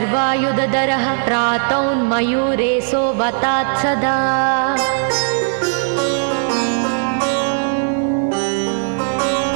प्रातौन्मयूरेशो वतात् सदा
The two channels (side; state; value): left; silent; 59 dB below the other